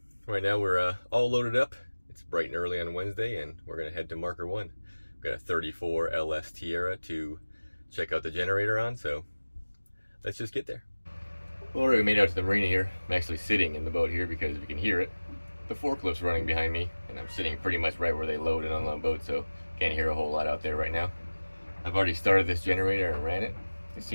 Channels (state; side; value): inverted; both; correlation -1.00